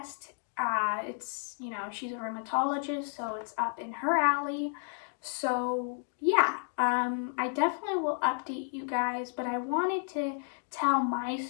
It's, you know, she's a rheumatologist, so it's up in her alley. So yeah, I definitely will update you guys, but I wanted to tell my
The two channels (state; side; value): silent; right; 57 dB below the other